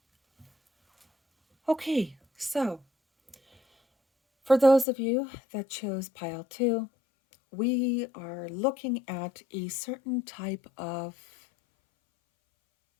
Okay, so for those of you that chose pile 2, we are looking at a certain type of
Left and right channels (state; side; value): drops out; right; at 4.9 s